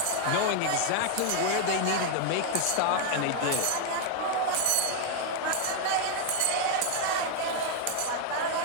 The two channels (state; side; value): different; both; correlation 0.00